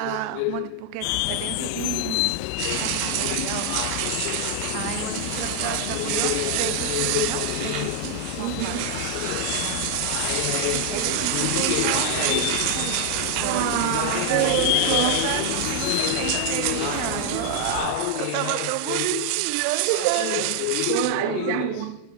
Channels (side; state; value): both; different; correlation 0.00